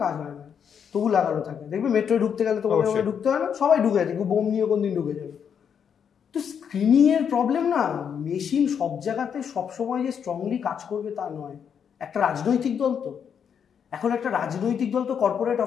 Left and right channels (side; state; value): right; quieter; 7.6 dB